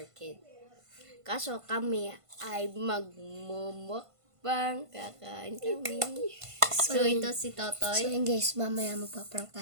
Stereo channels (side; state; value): left; late; 1.5 ms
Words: Kid. Kaso kami ay magmumukbang, kakain kami. So ito si Totoy. So yun guys, mamaya magpa-prank